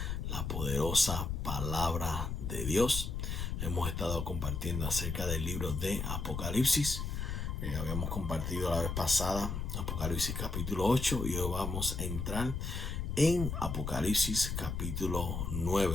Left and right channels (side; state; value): left; noise; rumble, 3 dB below the sound